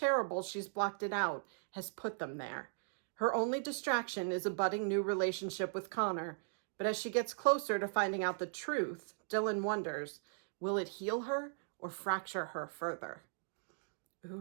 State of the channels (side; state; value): left; silent; digital silence